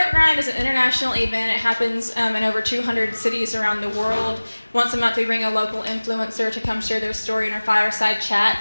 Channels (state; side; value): inverted; both; correlation -1.00